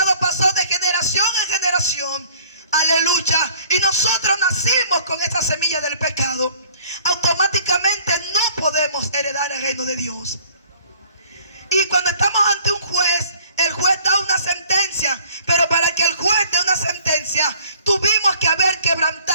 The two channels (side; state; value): both; inverted; correlation -0.54